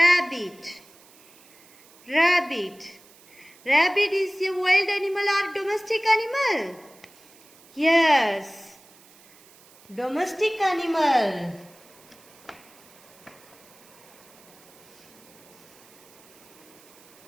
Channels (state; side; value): noise; right; hiss, 25 dB below the sound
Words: Rabbit. Rabbit is a wild animal or domestic animal? Yes, domestic animal.